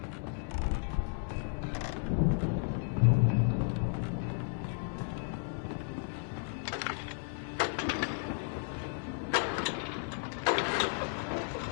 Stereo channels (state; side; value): silent; right; 55 dB below the other